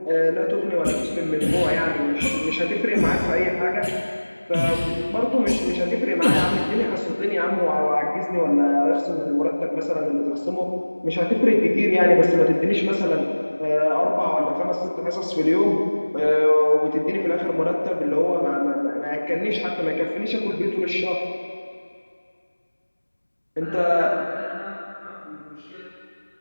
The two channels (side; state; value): both; inverted; correlation -1.00